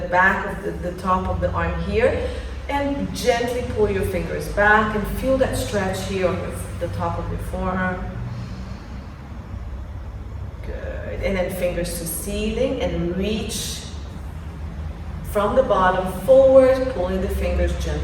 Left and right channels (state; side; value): identical; both; correlation 1.00